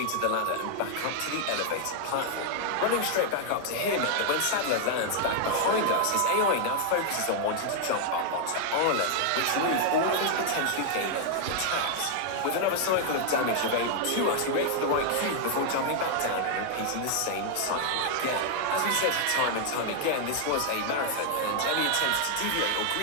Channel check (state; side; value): different; both; correlation 0.00